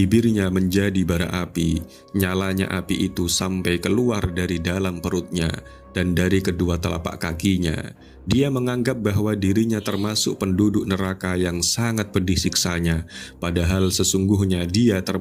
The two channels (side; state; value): both; identical; correlation 1.00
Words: menjadi bara api. Nyalanya api itu sampai keluar dari dalam perutnya dan dari kedua telapak kakinya. Dia menganggap bahwa dirinya termasuk penduduk neraka yang sangat pedih siksanya, padahal sesungguhnya dia